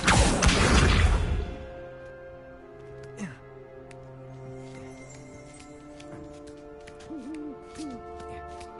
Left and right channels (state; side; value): identical; both; correlation 1.00